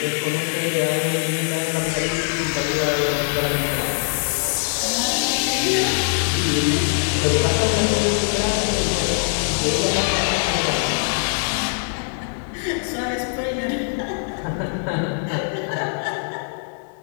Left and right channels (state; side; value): silent; right; 64 dB below the other